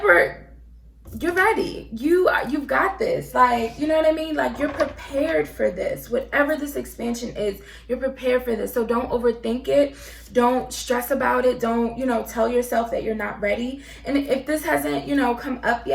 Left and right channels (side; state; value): both; identical; correlation 1.00